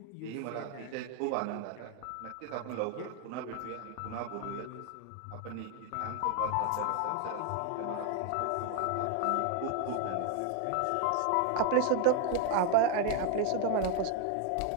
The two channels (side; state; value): both; different; correlation 0.00